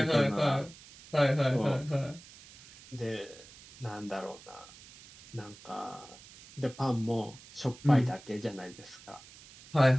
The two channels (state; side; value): noise; right; hiss, 20 dB below the sound